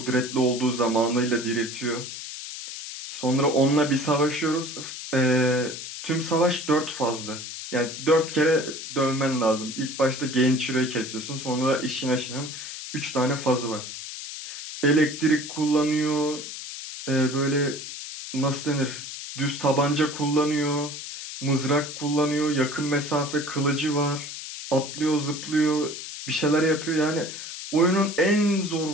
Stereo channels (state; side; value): noise; left; hiss, 9 dB below the sound